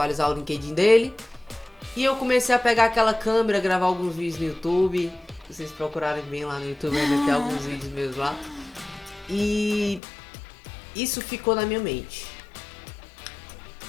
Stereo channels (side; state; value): right; drops out; at 10.0 s